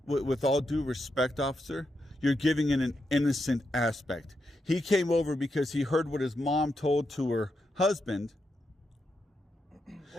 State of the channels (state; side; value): normal; both; correlation 0.84